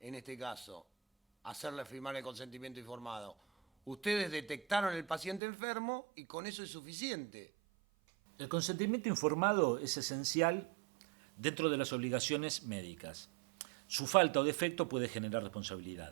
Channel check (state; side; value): drops out; left; at 5.4 s